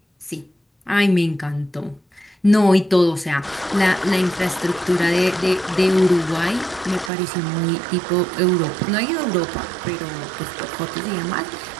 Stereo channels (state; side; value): drops out; left; at 7.1 s